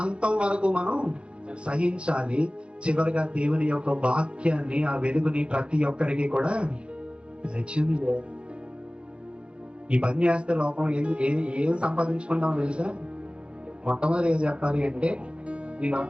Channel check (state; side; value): late; left; 0.057 ms